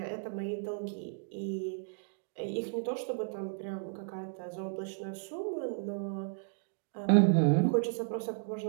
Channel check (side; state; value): left; silent; digital silence